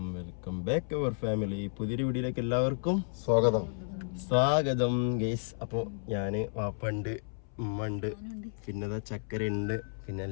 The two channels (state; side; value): silent; right; 56 dB below the other